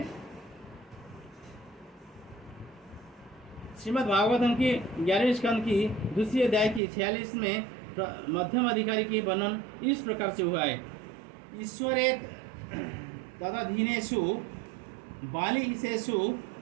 श्रीमद् भागवतम की 11वें स्कंद की दूसरी अध्याय की 46 में मध्यम अधिकारी की वर्णन इस प्रकार से हुआ है, ईश्वरे तदधीनेषु बालिशेषु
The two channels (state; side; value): drops out; left; at 6.8 s